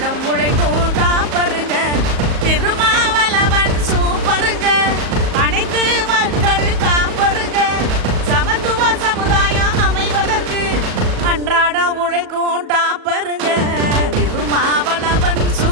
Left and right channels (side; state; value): left; late; 37 ms